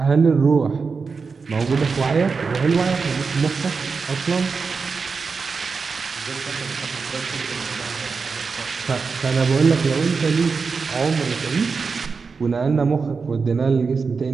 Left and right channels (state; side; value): quieter; left; 4.9 dB